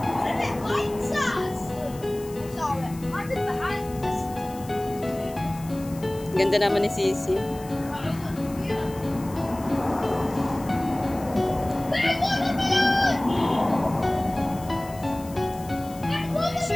What if it bites us? It's alright. What is behind us? Ganda naman ni Sisi.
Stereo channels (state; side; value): noise; left; hiss, 19 dB below the sound